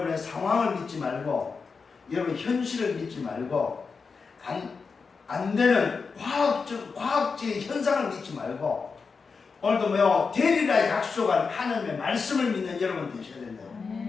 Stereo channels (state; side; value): quieter; right; 5.0 dB